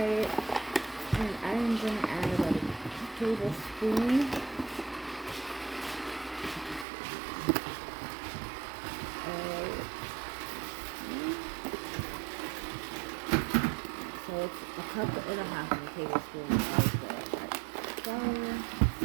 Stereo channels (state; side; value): drops out; left; at 6.9 s